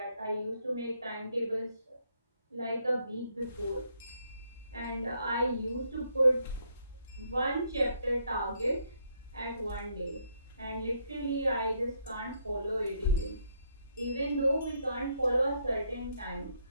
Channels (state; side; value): inverted; both; correlation -0.73